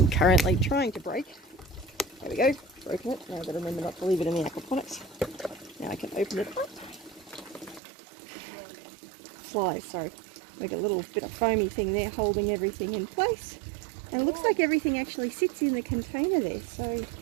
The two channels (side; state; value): left; drops out; at 7.8 s